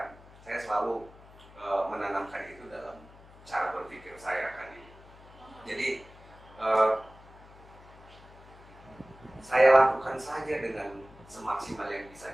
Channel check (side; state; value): left; noise; hum, 22 dB below the sound